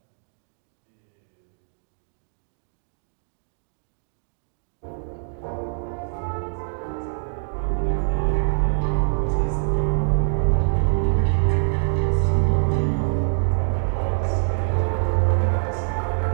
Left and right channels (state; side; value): silent; left; digital silence